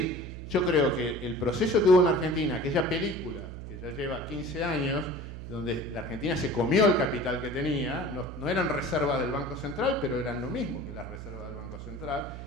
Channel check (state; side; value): noise; right; hum, 10 dB below the sound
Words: yo creo que el proceso que hubo en Argentina, aquella película que ya lleva 15 años, donde la Argentina se comió el capital que tenía, no eran reservas del Banco Central, pero eran lo mismo que las reservas del Banco Central,